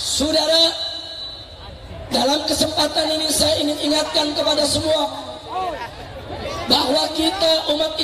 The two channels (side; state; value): both; identical; correlation 1.00